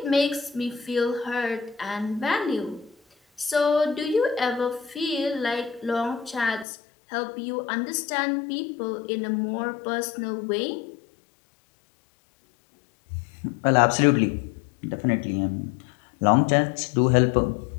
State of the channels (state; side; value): drops out; right; at 6.7 s